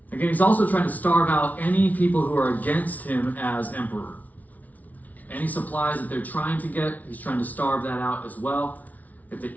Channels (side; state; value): right; late; 0.074 ms